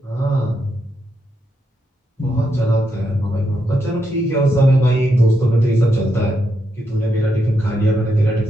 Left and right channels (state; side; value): normal; both; correlation 0.82